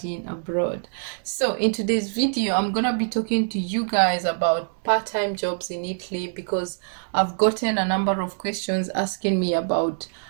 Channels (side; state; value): left; silent; 62 dB below the other